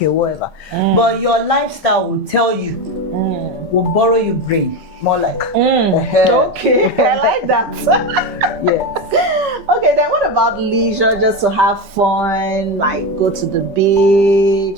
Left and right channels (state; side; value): late; left; 3.6 ms